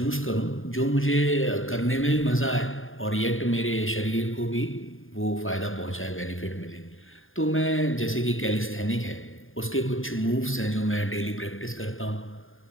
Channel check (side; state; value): right; late; 0.59 ms